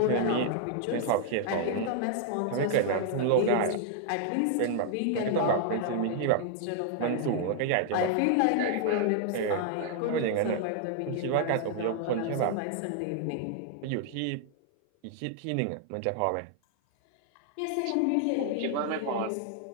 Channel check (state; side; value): different; both; correlation -0.01